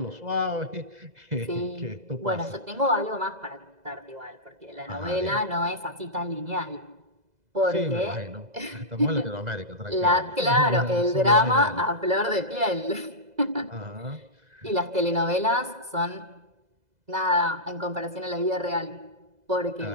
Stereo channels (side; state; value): left; late; 2.0 ms